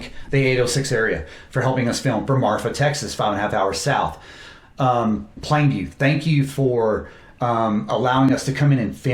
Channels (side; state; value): both; identical; correlation 1.00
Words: the 806 area for helping us film, for Marfa, Texas, 5.5 hours south. Plainview, thank you for allowing us to come in and